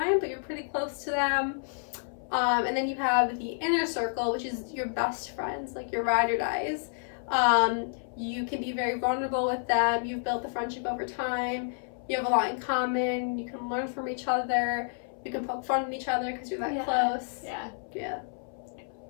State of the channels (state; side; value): silent; right; 58 dB below the other